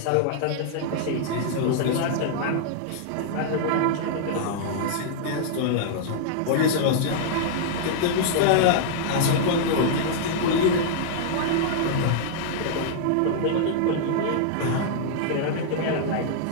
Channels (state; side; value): different; both; correlation -0.01